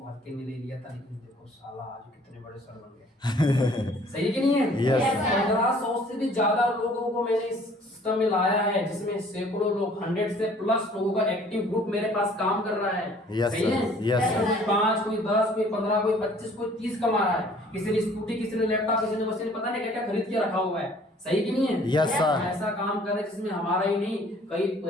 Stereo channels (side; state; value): both; normal; correlation 0.55